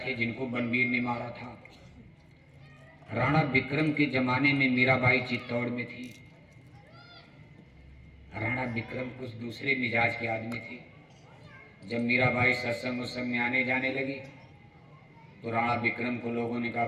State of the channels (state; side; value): identical; both; correlation 1.00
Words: जिनको बनवीर ने मारा था, राणा विक्रम के जमाने में मीराबाई चित्तौड़ में थी। राणा विक्रम कुछ दूसरे मिजाज के आदमी थे। जब मीराबाई सत्संग उत्संग में आने जाने लगी तो राणा विक्रम को लोगों ने कहा,